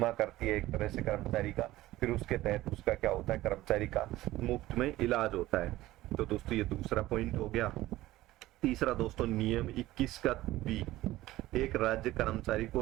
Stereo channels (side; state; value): left; quieter; 16.5 dB